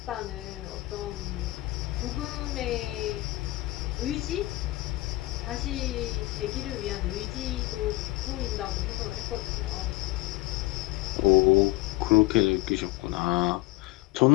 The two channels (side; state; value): right; quieter; 19.5 dB